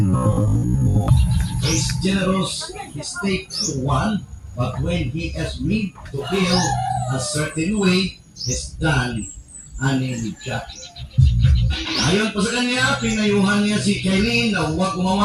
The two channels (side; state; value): both; identical; correlation 1.00